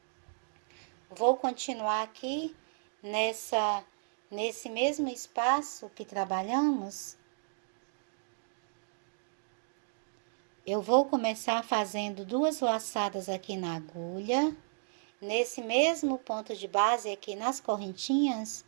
Vou continuar aqui nesse mesmo espaço que trabalhamos. Eu vou começar fazendo 2 laçadas aqui na agulha. Nesse mesmo ponto de base aqui nas correntinhas,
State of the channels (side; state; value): left; silent; digital silence